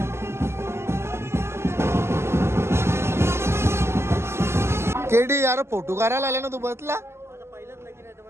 केडी यार फोटो काढायला आले ना तू बसला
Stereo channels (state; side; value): late; left; 0.12 ms